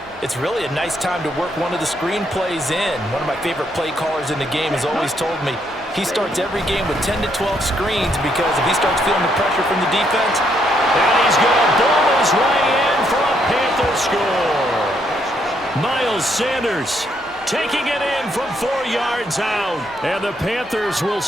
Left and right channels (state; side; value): normal; both; correlation 0.74